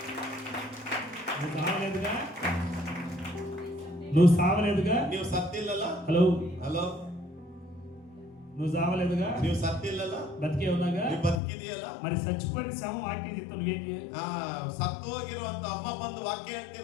నువ్వు సావలేదుగా, నువ్వు సావలేదుగా, ನೀವು ಸತ್ತಿಲ್ಲಲ್ಲ? హలో ಹಲೋ, నువ్వు సావలేదుగా, ನೀವು ಸತ್ತಿಲ್ಲಲ್ಲ? బతికే ఉన్నాగా, ನೀವು ಬದುಕಿದೆಯಲ್ಲ? మరి చచ్చిపోయిన శవం వాక్యం చెప్తా నువ్వేం చేయాలి? ಸತ್ತು ಹೋಗಿರುವಂತ ಅಮ್ಮ ಬಂದು ವಾಕ್ಯ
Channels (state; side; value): drops out; right; at 11.4 s